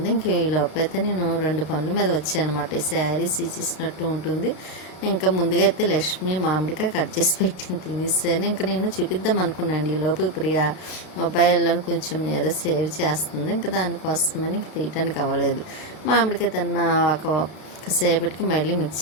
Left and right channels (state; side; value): late; right; 32 ms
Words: ఇంక ఈ లోపైతే నేను 2 పనుల మీద వచ్చానమాట. ఈ శారీస్ ఇచ్చినట్టు ఉంటుంది. ఇంకా ముందుగా అయితే లక్ష్మి మామిడికాయ కట్ చేసి పెట్టింది, తినేసాను. ఇంకా నేను చూపిద్దాం అనుకున్నాను. ఈ లోపు ప్రియా మొబైల్లో కొంచెం ఏదో సేవ్ చేస్తుంది, ఇంకా దానికోసమని ఇంక తీయటానికి అవ్వలేదు. మామిడికాయ తిన్న ఒకసేపటికి మళ్ళీ